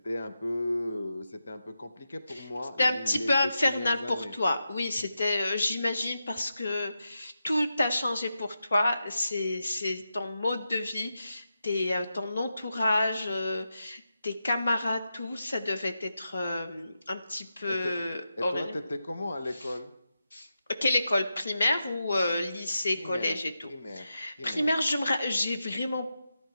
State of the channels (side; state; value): both; inverted; correlation -0.89